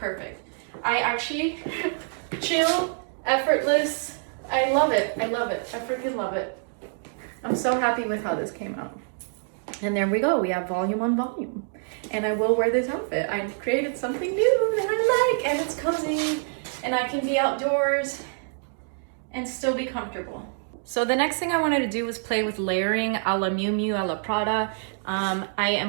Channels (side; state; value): left; silent; digital silence